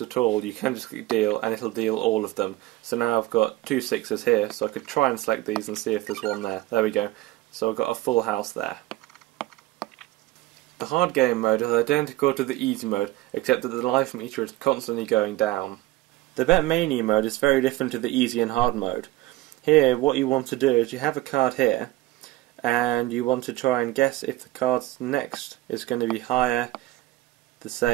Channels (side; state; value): left; quieter; 17.4 dB